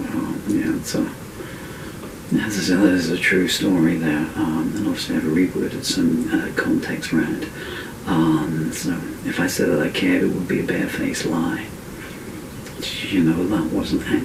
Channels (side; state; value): both; identical; correlation 1.00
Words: There's a true story there, and obviously I've reworded some context around. So if I said that I cared, it would be a barefaced lie. You know, that wasn't